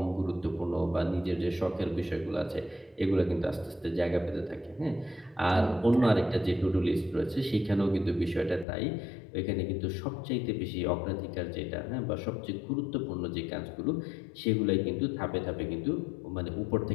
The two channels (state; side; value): drops out; right; at 8.7 s